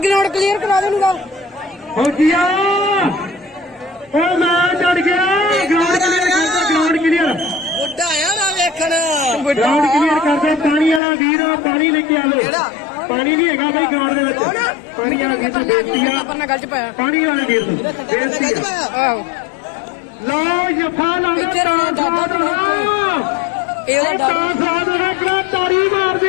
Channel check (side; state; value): right; drops out; at 11.0 s